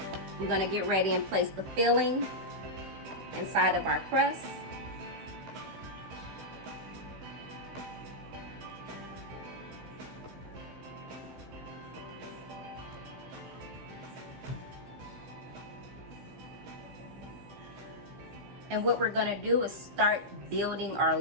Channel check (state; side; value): late; left; 15 ms